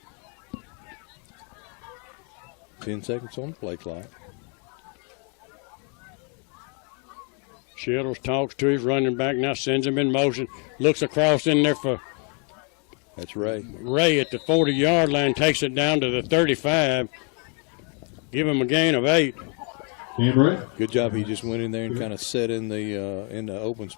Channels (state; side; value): quieter; right; 37.5 dB